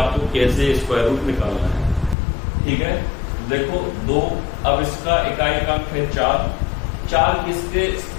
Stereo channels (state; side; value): drops out; right; at 2.1 s